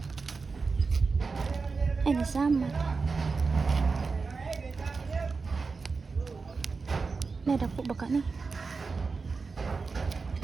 Ay, nasama. May dako ba ka ni?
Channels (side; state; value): left; quieter; 4.5 dB